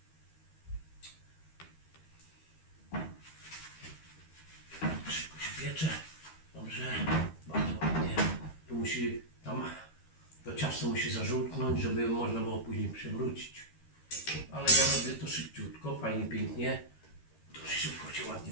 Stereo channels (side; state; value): right; late; 13 ms